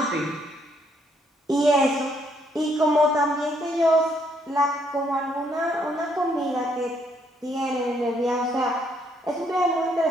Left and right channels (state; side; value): normal; both; correlation 0.71